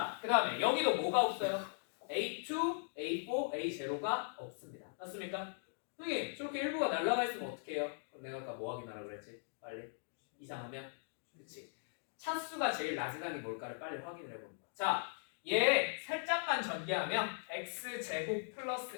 그 다음에 여기도 뭐가 없어요? A2, A4, A0가 없습니다. 맞습니까? 선생님 저렇게 일부가 날아가 있으면 어떻게 해요? 그럼 내가 아까 뭐 확인하라 그랬지? 빨리 이상하면 그렇지. 차수가 제일 낮은 항이 뭘까를 빨리 확인을 해봅니다. 자, 얘 살짝만 전개하면 x제곱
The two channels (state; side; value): silent; right; digital silence